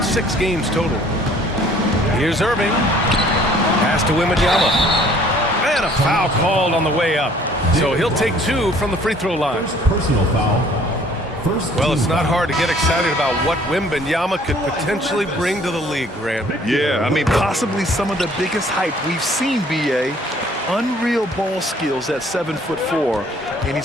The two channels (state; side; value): normal; both; correlation 0.57